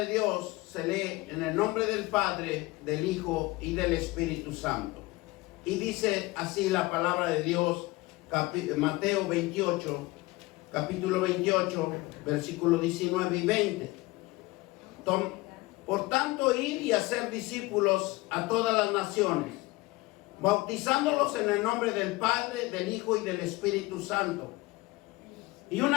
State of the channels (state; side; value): quieter; right; 21.5 dB